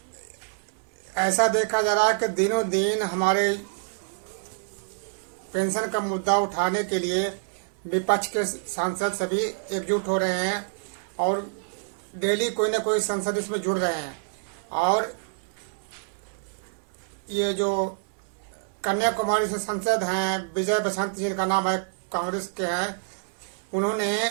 ऐसा देखा जा रहा है कि दिनों दिन हमारे पेंशन का मुद्दा उठाने के लिए विपक्ष के सांसद सभी एकजुट हो रहे हैं और डेली कोई ना कोई सांसद इसमें जुड़ रहे हैं। और ये जो कन्याकुमारी से सांसद हैं विजय बसंत जिनका नाम है, कांग्रेस के हैं, उन्होंने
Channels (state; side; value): silent; left; 60 dB below the other